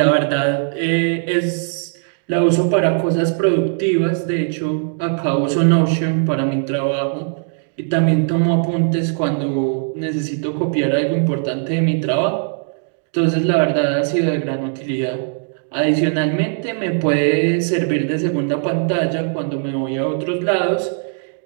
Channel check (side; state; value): left; silent; digital silence